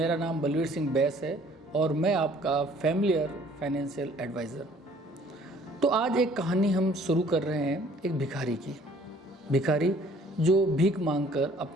नाम बलवीर सिंह बैस है और मैं आपका फैमिलियर फाइनेंशियल एडवाइज़र। तो आज एक कहानी हम शुरू कर रहे हैं एक भिखारी की। भिखारी जो भीख मांगकर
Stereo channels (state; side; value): normal; both; correlation 0.56